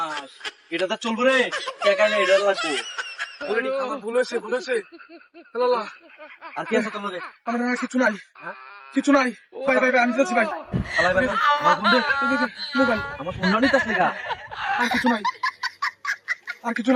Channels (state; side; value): identical; both; correlation 1.00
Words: এটা তো চলবো রে টাকাইলে এটা লাগবো বলেছে বলেছে আর কি আছে তোমাদের আমার আর কিছু নাই, কিছু নাই ভাই ভাই ভাই, আমি যাচ্ছি ভাই। চালাই ভাই আমার ফোন দে মোবাইল আমার ফোন নিতে আসলে গা আর কিছু নাই, আর কিছু